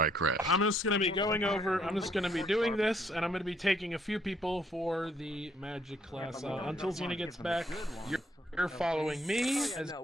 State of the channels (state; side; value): normal; both; correlation 0.68